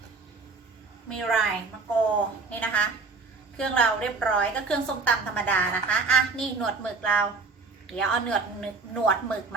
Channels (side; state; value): left; quieter; 4.2 dB